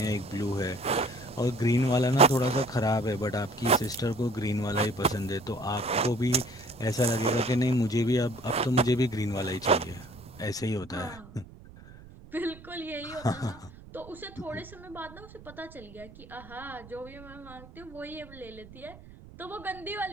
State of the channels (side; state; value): right; noise; rumble, 19 dB below the sound